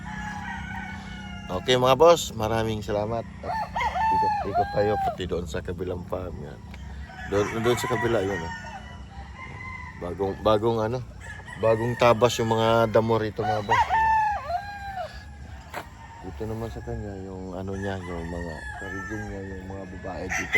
Okay mga boss, maraming salamat. Ikot tayo pati doon sa kabilang farm yan. Doon sa kabila yun. Bagong tabas yung mga damo rito mga boss. Dito naman sa kanya yung yung mga karigin niya, yung mga babae dito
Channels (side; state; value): both; identical; correlation 1.00